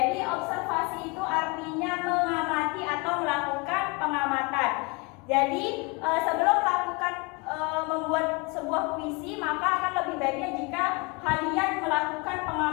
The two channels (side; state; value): right; quieter; 28.5 dB